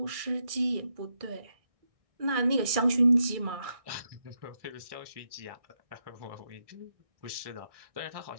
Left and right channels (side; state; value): left; late; 1.6 ms